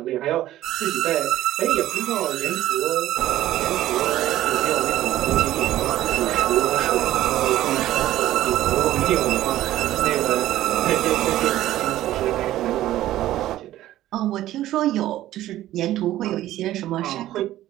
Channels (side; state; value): left; quieter; 14.2 dB